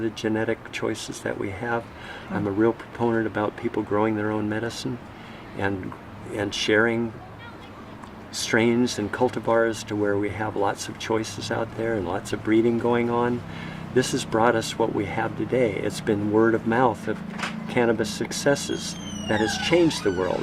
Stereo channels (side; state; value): both; identical; correlation 1.00